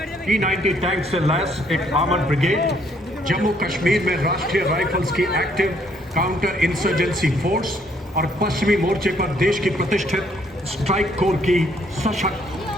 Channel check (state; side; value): normal; both; correlation 0.67